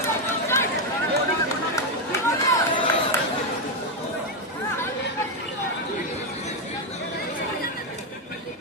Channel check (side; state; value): both; normal; correlation 0.05